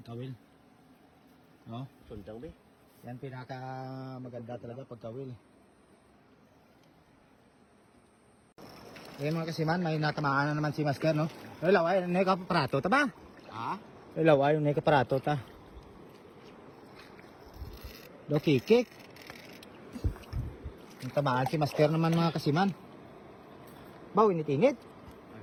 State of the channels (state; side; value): identical; both; correlation 1.00